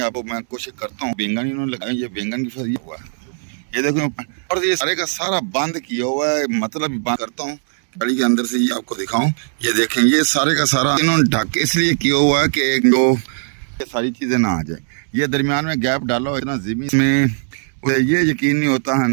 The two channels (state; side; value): silent; left; digital silence